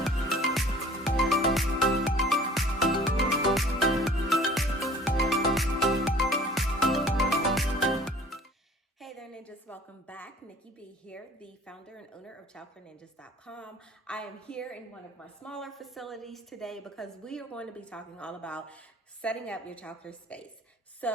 Ninjas, welcome back. Nikki B here, the founder and owner of ChildcareNinjas.com. I am here in one of my smaller facilities today because we are going to be talking all about setting up your childcare space.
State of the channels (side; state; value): both; normal; correlation 0.50